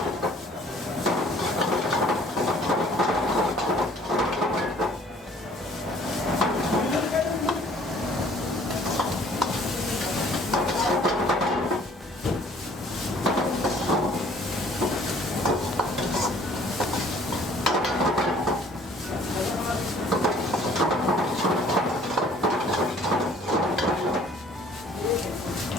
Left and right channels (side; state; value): both; normal; correlation 0.55